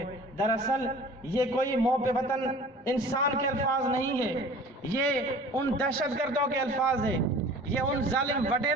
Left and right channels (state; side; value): normal; both; correlation 0.45